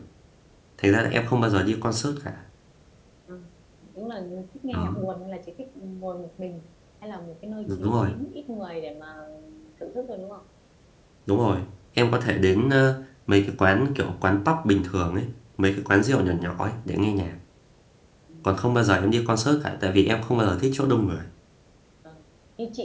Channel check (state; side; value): identical; both; correlation 1.00